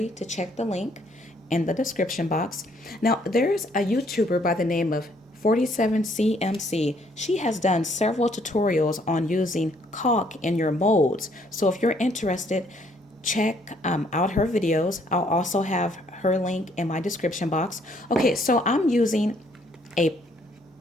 to check the link in the description box. Now, there's a YouTuber by the name of 47CMC. She has done several tutorials on using caulk in your molds. So if you're interested, check out her videos. I'll also have her link in my description box. Okay, so I'm using a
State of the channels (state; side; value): normal; both; correlation 0.66